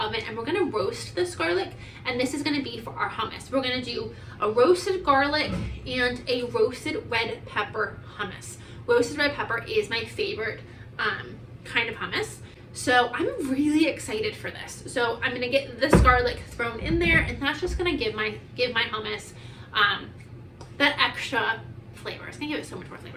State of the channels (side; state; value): both; identical; correlation 1.00